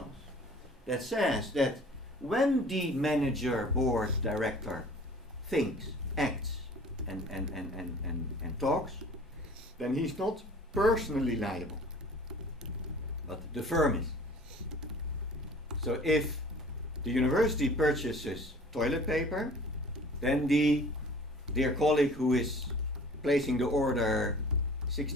that says that when the manager, board, director thinks, acts, and talks, then he's not personally liable, but the firm is. So if the university purchases toilet paper, then the dear colleague who is placing the order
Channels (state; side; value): normal; both; correlation 0.48